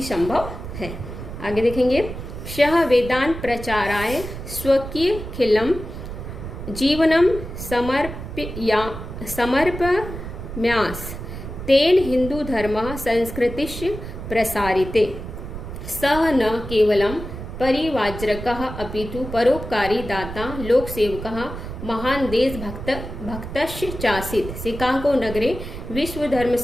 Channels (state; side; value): noise; right; rumble, 9 dB below the sound